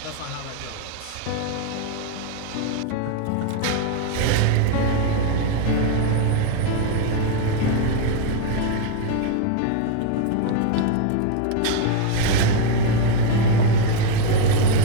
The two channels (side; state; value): both; different; correlation 0.01